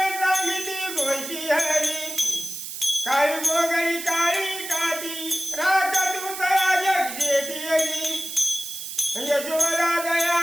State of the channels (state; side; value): noise; right; hiss, 8 dB below the sound